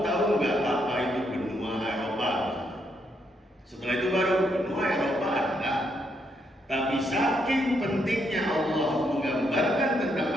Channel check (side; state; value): both; normal; correlation 0.76